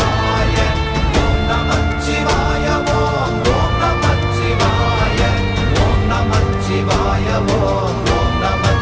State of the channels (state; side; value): identical; both; correlation 1.00